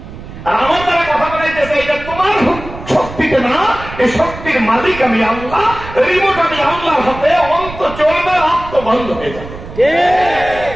আর আমার দ্বারা কথা বলাইতেছে এটা তোমার শক্তিতে না, এই শক্তির মালিক আমি আল্লাহ, রিমোট আমি আল্লাহর হাতে, অন্ত চলবে, আত্ম বন্ধ হয়ে যাবে।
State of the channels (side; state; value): right; noise; rumble, 13 dB below the sound